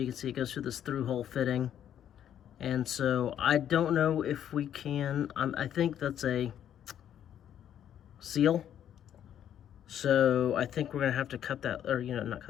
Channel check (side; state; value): right; quieter; 10.1 dB